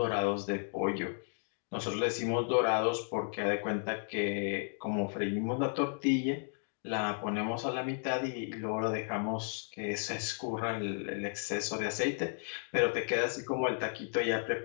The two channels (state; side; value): silent; right; 55 dB below the other